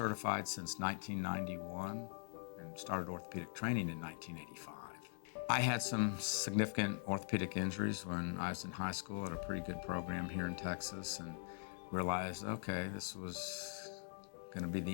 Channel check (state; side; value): silent; right; digital silence